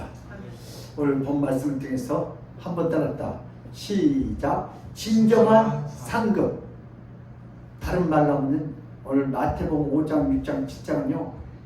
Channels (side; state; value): both; identical; correlation 1.00